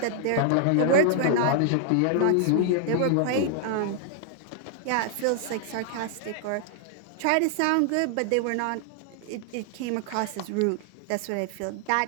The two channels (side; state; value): both; different; correlation 0.00